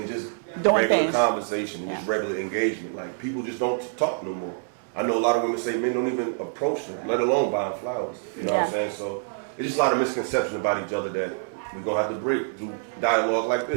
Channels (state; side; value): silent; left; digital silence